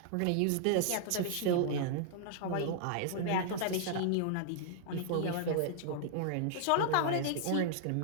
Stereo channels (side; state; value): both; different; correlation -0.01